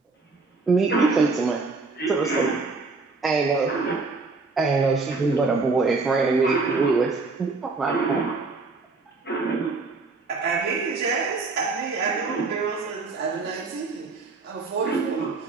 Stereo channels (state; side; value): quieter; left; 3.9 dB